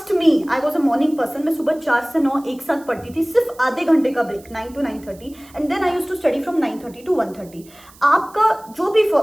me I was a morning person, मैं सुबह 4 से 9 एक साथ पढ़ती थी, सिर्फ आधे घंटे का break 9 to 9:30, and then I used to study from 9:30 to 1:30। आपका जो भी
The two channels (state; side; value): noise; right; hiss, 25 dB below the sound